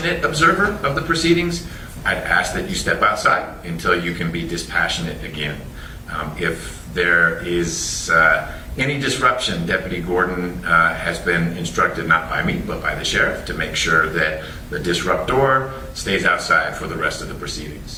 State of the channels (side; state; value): both; identical; correlation 1.00